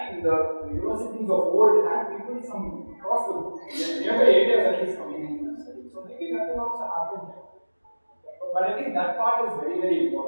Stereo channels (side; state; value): both; inverted; correlation -1.00